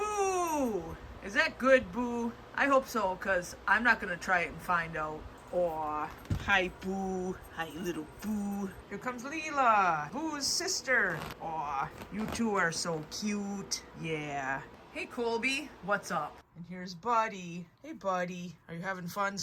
Is that good, Boo? I hope so, because I'm not going to try it and find out. Aw. Hi, Boo. Hi, little Boo. Here comes Leela, Boo's sister. Aw. You two are so cute. Yeah. Hey, Colby. What's up? And here's Buddy. Hey, Buddy. Are you having fun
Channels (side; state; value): both; identical; correlation 1.00